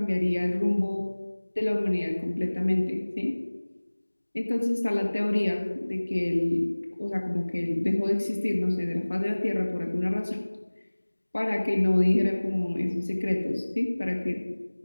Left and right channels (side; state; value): both; inverted; correlation -1.00